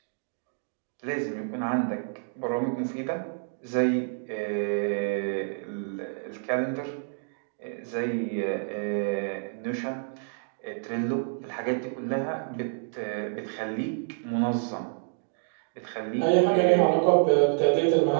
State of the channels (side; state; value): left; silent; digital silence